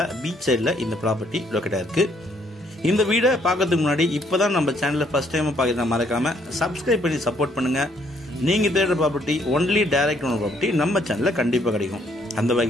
பீச் சைடில் இந்த ப்ராப்பர்ட்டி லொக்கேட்டாக இருக்குது. இந்த வீடை பார்க்கறதுக்கு முன்னாடி இப்போ தான் நம்ம சேனலில் ஃபஸ்ட் டைம் பார்க்குறதா மறக்காமல் சப்ஸ்கிரைப் பண்ணி சப்போர்ட் பண்ணுங்கள். நீங்கள் தேடுற property only direct owner property நம்ம சேனலில் கண்டிப்பாக கிடைக்கும். அந்த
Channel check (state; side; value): normal; both; correlation 0.68